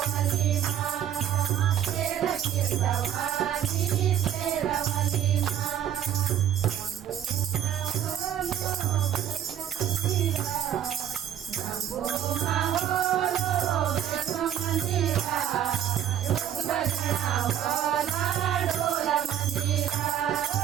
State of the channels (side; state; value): left; quieter; 10.4 dB